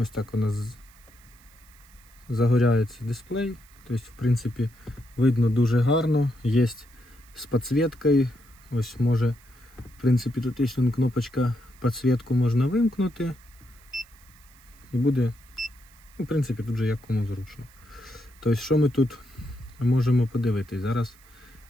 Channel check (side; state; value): right; noise; hiss, 28 dB below the sound